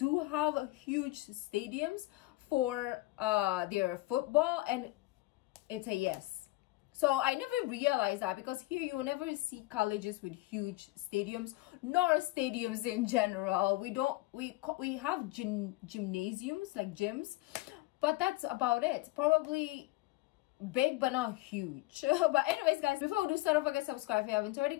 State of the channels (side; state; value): right; quieter; 19.8 dB